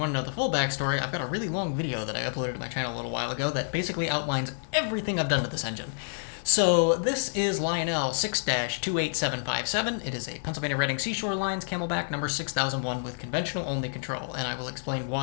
to know the full backstory, I've got a really long video that I uploaded to my channel a little while ago that basically outlines everything I've done to this engine. So this is Lionel 6-28757. It is a Pennsylvania Reading Seashore Lines Camelback number 6001 with conventional only control, and I will explain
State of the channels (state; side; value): silent; right; 59 dB below the other